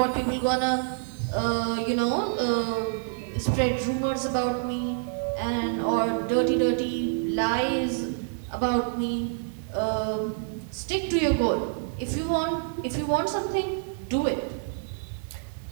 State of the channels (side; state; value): left; silent; digital silence